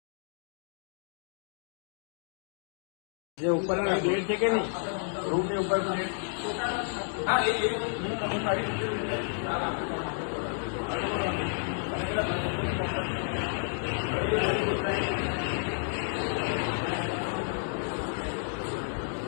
જે ઉપર પ્લેટ છે કે નહીં રૂમ ની ઉપર પ્લેટ હા એ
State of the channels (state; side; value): silent; right; digital silence